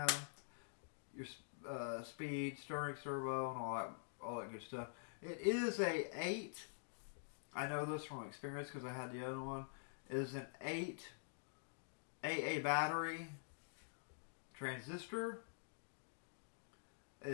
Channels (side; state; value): right; silent; digital silence